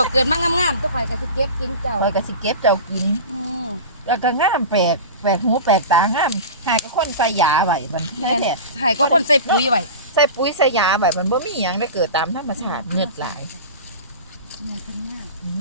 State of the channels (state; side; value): inverted; both; correlation -0.31